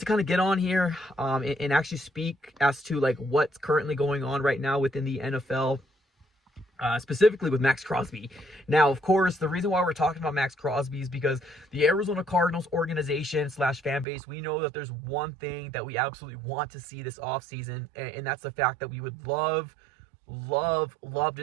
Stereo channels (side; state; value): left; drops out; at 14.1 s